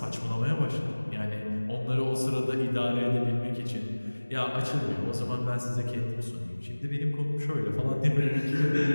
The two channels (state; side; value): inverted; both; correlation -1.00